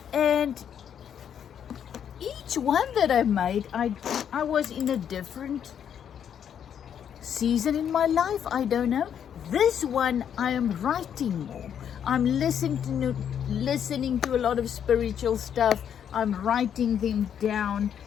And each one that I made, I was in a different season in my life, I don't know. This one I am writing more. I'm listening to a lot of spiritual stuff. I'm writing them down.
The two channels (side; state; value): right; quieter; 8.7 dB